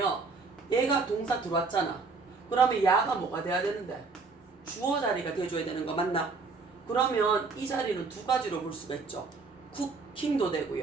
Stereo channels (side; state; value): left; quieter; 4.3 dB